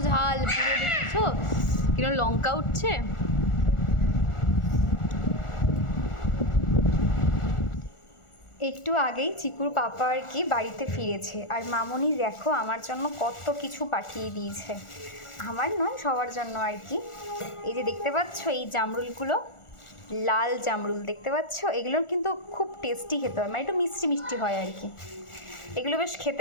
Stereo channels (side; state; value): right; late; 1.4 ms